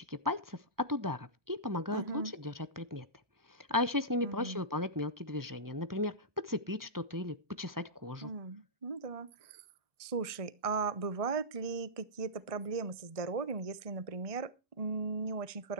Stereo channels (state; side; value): late; left; 1.6 ms